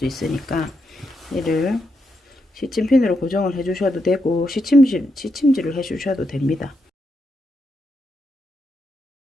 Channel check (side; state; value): both; normal; correlation 0.82